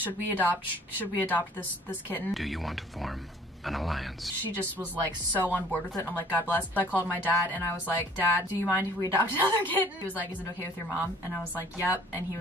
we adopt this kitten? Do you want to form an alliance? She just was like so on board with it, and I'm like, God bless. So I called my dad and I was like, Dad, do you mind if we adopt another kitten? He was like, is it okay with your mom? And I was like, yep. And he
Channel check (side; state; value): both; normal; correlation 0.54